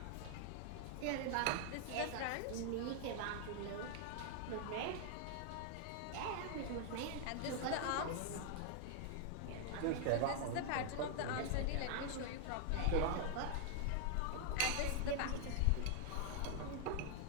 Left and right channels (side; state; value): both; different; correlation 0.00